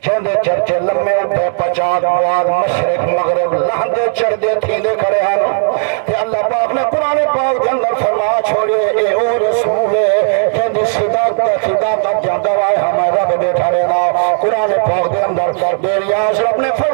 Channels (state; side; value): silent; left; digital silence